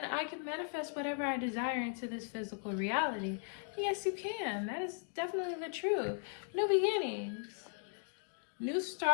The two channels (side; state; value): right; silent; 53 dB below the other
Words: I can manifest whatever I desire into this physical reality. Yes, you can. That is definitely the truth. New beginnings, new